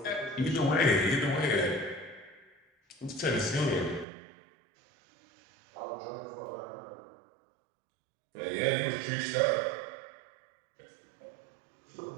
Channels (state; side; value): drops out; left; at 4.0 s